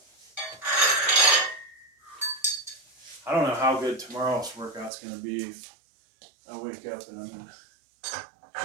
I don't know how good tomorrow's workout's gonna be if I wake up and I'm in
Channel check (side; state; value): left; drops out; at 4.9 s